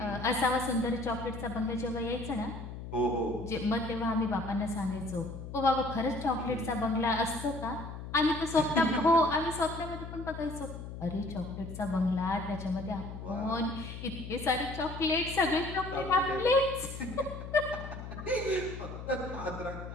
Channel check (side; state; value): left; noise; hum, 9 dB below the sound